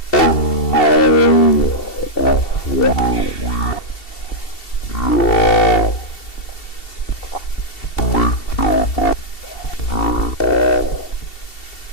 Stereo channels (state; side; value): late; right; 2.7 ms